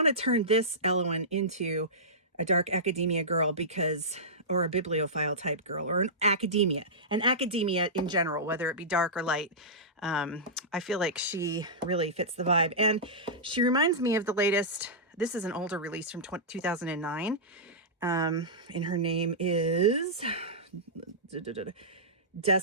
to turn this Ellowyne into a Dark Academia girl or a bibliophile type girl, or an academia in general, whether it be dark or light. I feel like she really fits the vibe. And she reminds me of the latest, this is an older release from 2009. And her name is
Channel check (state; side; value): normal; both; correlation -0.16